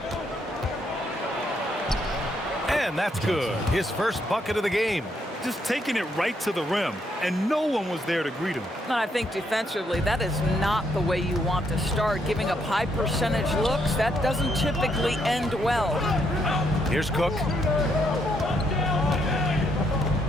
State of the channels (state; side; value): normal; both; correlation 0.74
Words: And that's good. His first bucket of the game. Just taking it right to the rim, and no one was there to greet him. I think defensively, that is not the way you want to start. Giving up high percentage looks, that doesn't typically end well. Here's Cook.